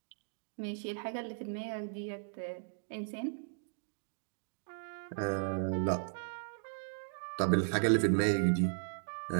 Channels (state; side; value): silent; left; digital silence